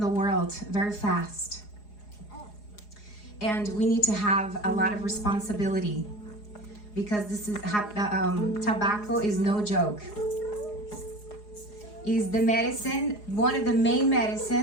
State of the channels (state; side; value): late; right; 4.8 ms